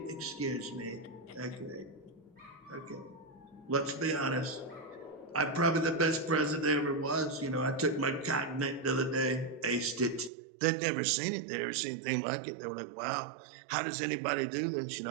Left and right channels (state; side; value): drops out; left; at 10.3 s